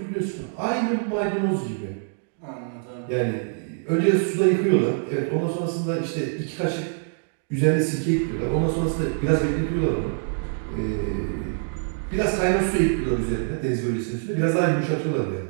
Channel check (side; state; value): left; silent; digital silence